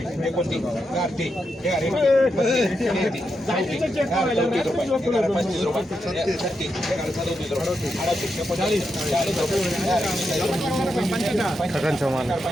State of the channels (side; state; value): both; normal; correlation 0.85